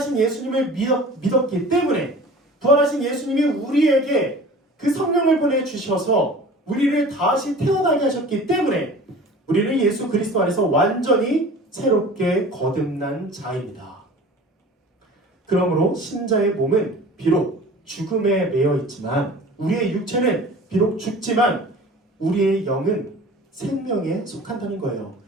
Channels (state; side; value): normal; both; correlation 0.42